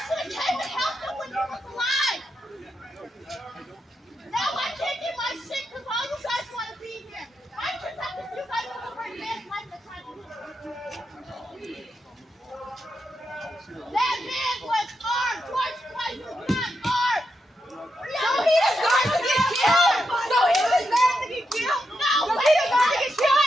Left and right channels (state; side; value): normal; both; correlation 0.84